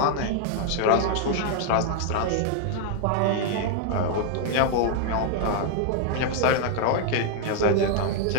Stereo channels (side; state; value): both; different; correlation 0.00